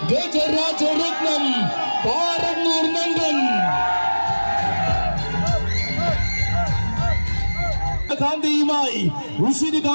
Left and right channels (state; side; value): inverted; both; correlation -1.00